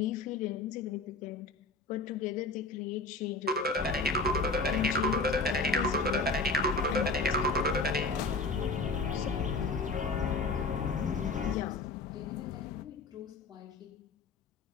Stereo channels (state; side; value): quieter; right; 3.5 dB